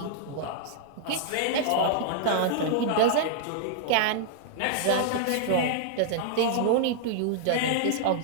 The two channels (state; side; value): different; both; correlation -0.01